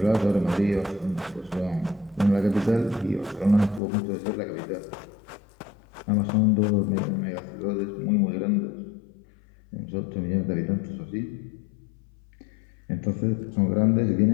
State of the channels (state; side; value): drops out; right; at 3.8 s